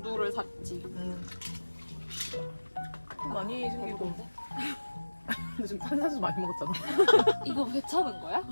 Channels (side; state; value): both; inverted; correlation -1.00